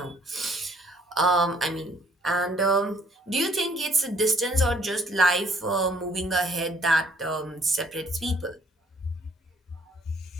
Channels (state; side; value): normal; both; correlation 0.62